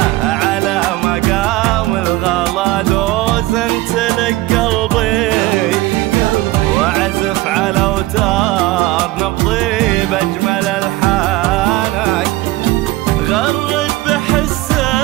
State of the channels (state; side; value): quieter; left; 18.2 dB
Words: على مقام الغلا دوزنت لك قلبي، وعزف على اوتار نبضي باجمل الحانك. غرد